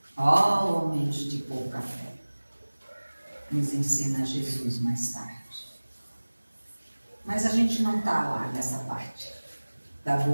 homens de pouca fé, nos ensina Jesus mais tarde. Mas a gente não está lá nessa parte da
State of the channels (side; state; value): both; inverted; correlation -1.00